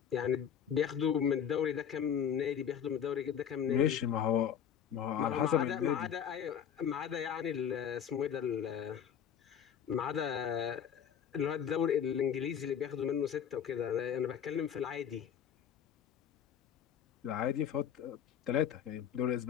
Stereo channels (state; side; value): quieter; right; 8.6 dB